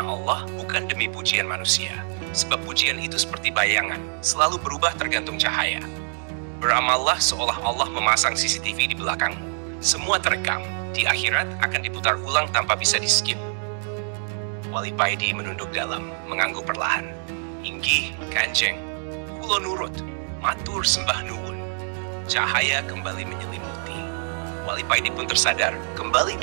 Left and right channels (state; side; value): silent; left; 62 dB below the other